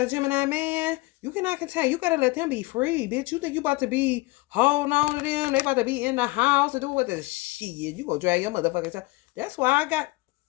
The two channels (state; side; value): quieter; right; 22.5 dB